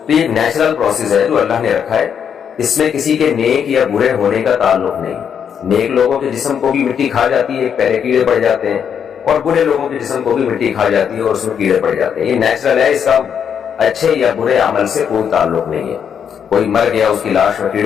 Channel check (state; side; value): quieter; right; 7.8 dB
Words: تو یہ نیچرل پروسیس ہے جو اللہ نے رکھا ہے۔ اس میں کسی کے نیک یا برے ہونے کا تعلق نہیں۔ نیک لوگوں کے جسم کو بھی مٹی کھا جاتی ہے، پہلے کیڑے پڑ جاتے ہیں، اور برے لوگوں کے جسم کو بھی مٹی کھا جاتی ہے اور اس میں کیڑے پڑ جاتے ہیں۔ یہ نیچرل ہے، اس کا اچھے یا برے عمل سے کوئی تعلق نہیں ہے۔ کوئی مر گیا، اس کی لاش میں